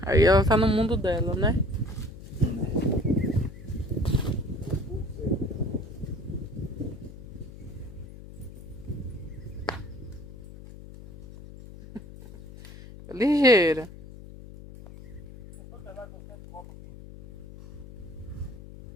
Aí ela tá no mundo dela, né? Ligeira.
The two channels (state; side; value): noise; left; hum, 15 dB below the sound